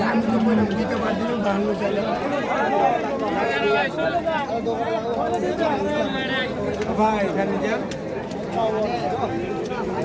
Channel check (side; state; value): both; identical; correlation 1.00